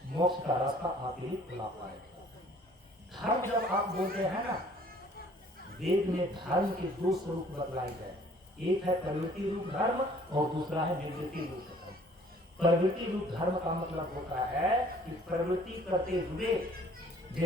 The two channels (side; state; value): both; normal; correlation 0.56